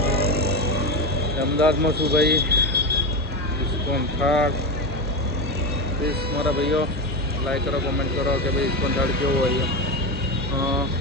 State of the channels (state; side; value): normal; both; correlation 0.17